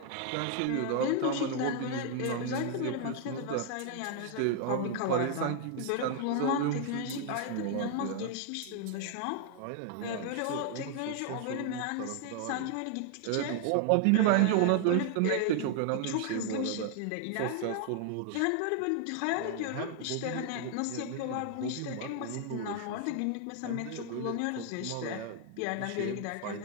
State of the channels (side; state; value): both; different; correlation 0.00